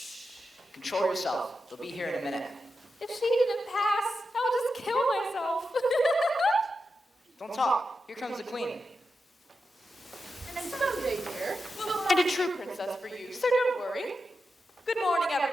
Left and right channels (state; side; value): normal; both; correlation 0.89